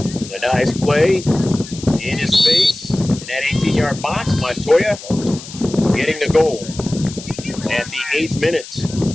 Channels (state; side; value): noise; left; hiss, 14 dB below the sound